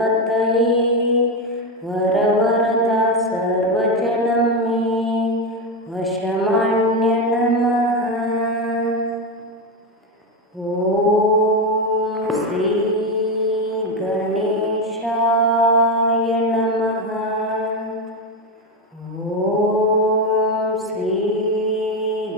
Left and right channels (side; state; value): both; normal; correlation 0.12